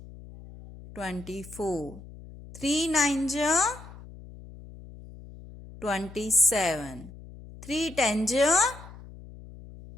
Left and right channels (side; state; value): left; noise; hum, 17 dB below the sound